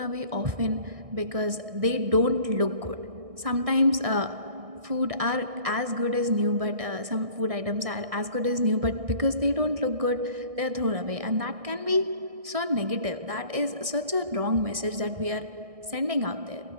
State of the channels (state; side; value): late; left; 1.6 ms